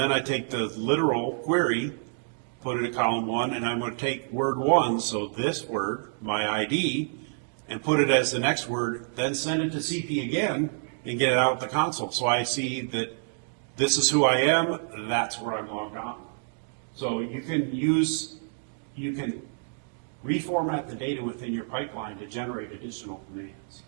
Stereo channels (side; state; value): left; silent; digital silence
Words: I take the literal query, put it in column 1, and I'm going to take word 1, so this word, my ID, and put it as the next word, then send it to CP again, and get it out of the console. So I see that this is who I am, that's where I'm logged on. So you can reformat the data within your pipeline to generate additional commands.